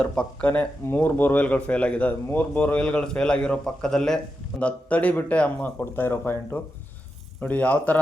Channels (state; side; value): normal; both; correlation 0.88